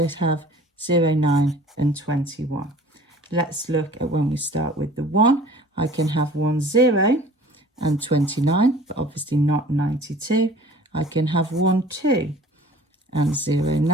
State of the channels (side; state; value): both; normal; correlation 0.47